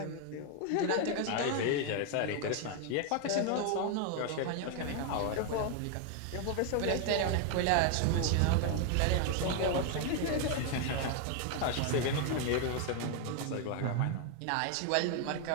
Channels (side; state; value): both; different; correlation 0.01